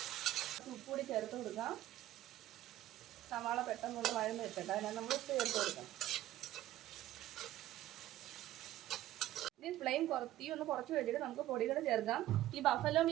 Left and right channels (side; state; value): left; quieter; 14.3 dB